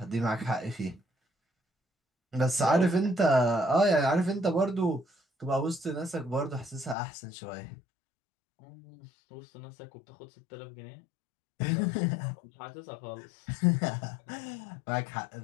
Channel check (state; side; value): drops out; right; at 7.0 s